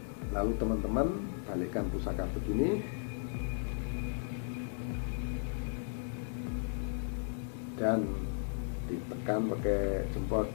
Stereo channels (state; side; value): silent; right; digital silence